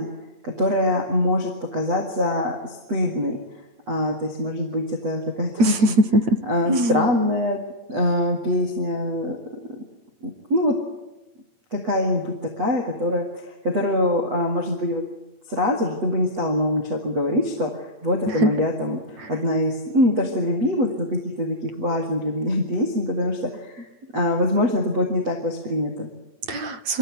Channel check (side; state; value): left; late; 8.8 ms